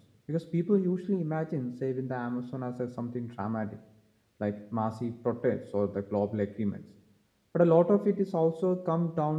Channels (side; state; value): both; identical; correlation 1.00